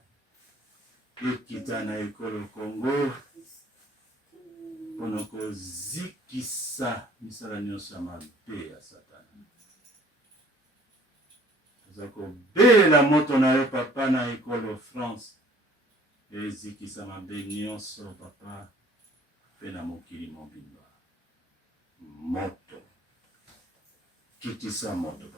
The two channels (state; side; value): normal; both; correlation 0.55